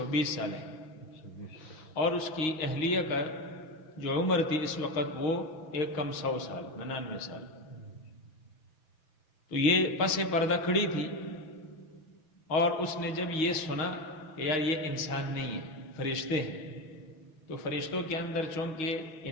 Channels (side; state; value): right; late; 6.4 ms